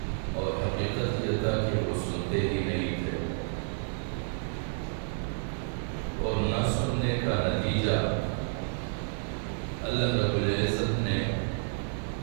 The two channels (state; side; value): silent; left; digital silence